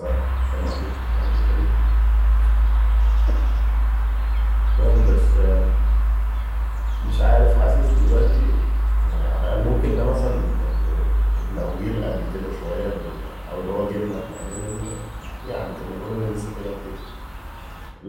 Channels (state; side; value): identical; both; correlation 1.00